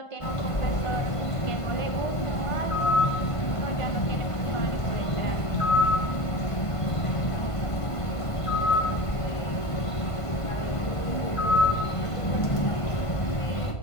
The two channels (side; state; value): right; late; 1.5 ms